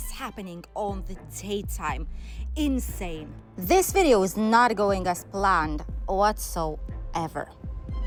happening on the daytime. Insane. This video is not going as planned whatsoever.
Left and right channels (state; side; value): identical; both; correlation 1.00